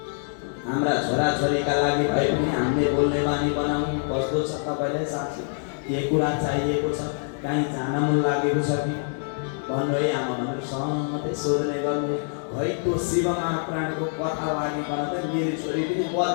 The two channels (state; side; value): silent; right; 60 dB below the other